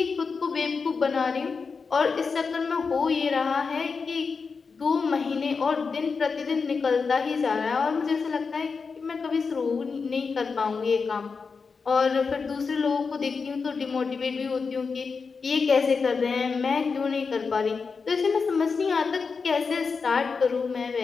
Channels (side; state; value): right; quieter; 5.0 dB